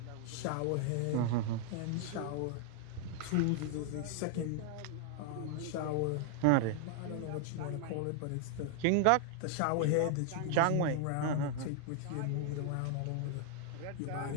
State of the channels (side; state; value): both; different; correlation 0.00